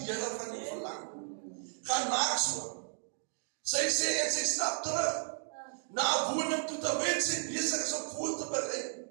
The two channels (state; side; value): silent; left; 55 dB below the other